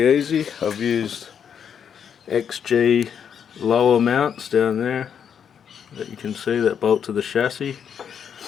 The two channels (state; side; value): quieter; right; 7.8 dB